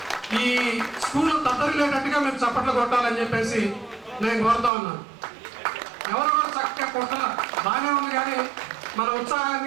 ఈ స్కూల్లో తద్దరిల్లేటట్టుగా మీరు చప్పట్లు కొట్టాలని చెప్పేసి నేను కోరుతా ఉన్నాను. ఎవరు కూడా చక్కగా కొట్టాల బాగానే ఉంది, కానీ మన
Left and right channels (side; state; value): left; drops out; at 4.7 s